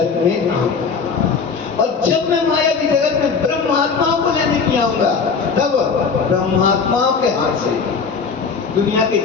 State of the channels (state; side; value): quieter; right; 5.3 dB